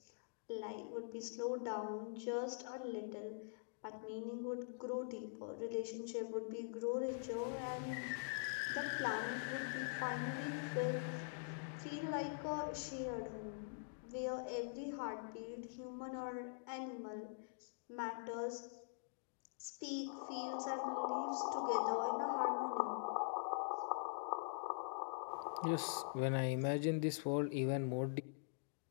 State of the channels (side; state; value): right; silent; digital silence